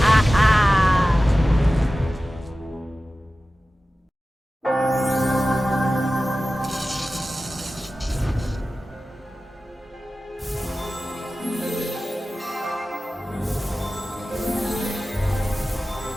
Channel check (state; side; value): normal; both; correlation 0.95